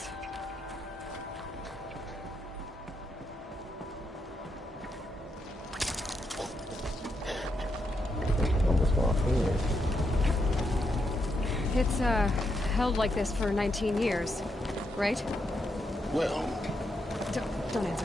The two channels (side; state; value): both; normal; correlation 0.81